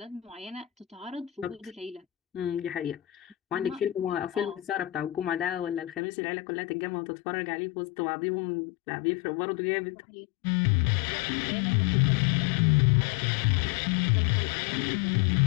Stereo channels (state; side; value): drops out; right; at 6.0 s